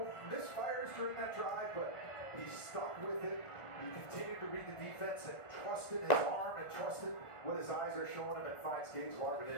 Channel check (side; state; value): right; late; 1.5 ms